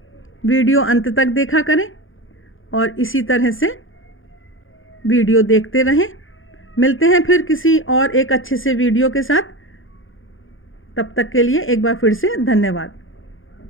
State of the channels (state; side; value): late; right; 0.59 ms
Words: वीडियो अंत तक देखा करें और इसी तरह से वीडियो देखते रहें। मिलते हैं फिर किसी और एक अच्छे से वीडियो के साथ। तब तक के लिए एक बार फिर से धन्यवाद।